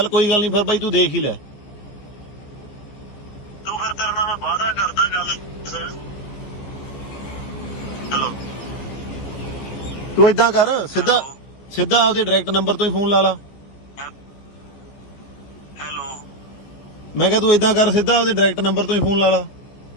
ਕੋਈ ਗੱਲ ਨਹੀਂ, ਫਿਰ ਬਾਈ ਤੂੰ ਦੇਖ ਹੀ ਲੈ। ਤੂੰ ਫਿਰ ਤੇਰੇ ਨਾਲ ਮੈਂ ਵਾਅਦਾ ਕਰਦਾ ਗੱਲ। ਹੈਲੋ, ਤੂੰ ਏਦਾਂ ਕਰ, ਸਿੱਧਾ ਆਪਦੇ ਡਾਇਰੈਕਟ ਨੰਬਰ ਤੋਂ ਹੀ ਫੋਨ ਲਾ ਲਾ। ਹੈਲੋ, ਮੈਂ ਕਿਹਾ ਤੂੰ ਏਦਾਂ ਕਰ, ਸਿੱਧਾ ਆਪਦੇ ਡਾਇਰੈਕਟ ਨੰਬਰ ਤੋਂ ਹੀ ਫੋਨ ਲਾ ਲਾ।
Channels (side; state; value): right; late; 15 ms